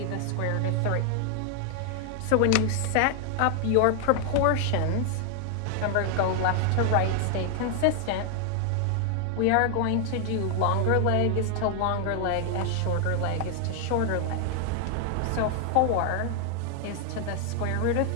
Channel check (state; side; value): different; both; correlation 0.00